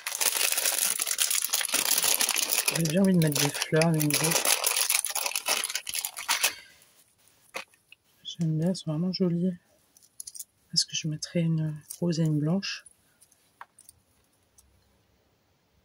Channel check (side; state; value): both; identical; correlation 1.00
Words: J'ai bien envie de mettre des fleurs, des nouveaux. J'aime bien, elles sont vraiment jolies. Est-ce que je mettrai une rose et une blanche?